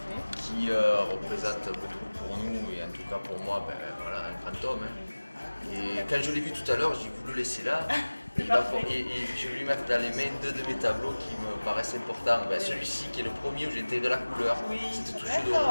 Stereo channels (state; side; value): inverted; both; correlation -1.00